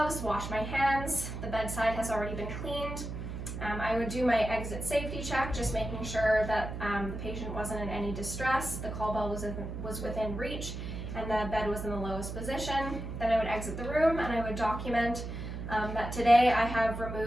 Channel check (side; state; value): right; noise; hum, 6 dB below the sound